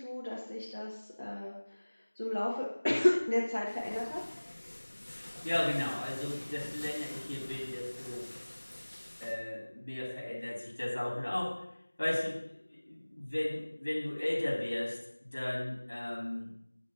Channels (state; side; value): inverted; both; correlation -1.00